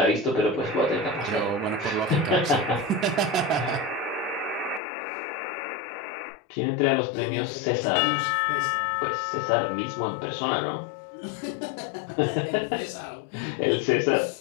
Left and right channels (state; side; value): drops out; right; at 4.8 s